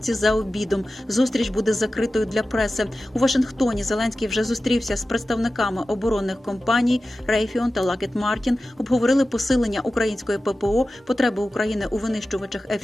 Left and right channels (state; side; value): normal; both; correlation 0.94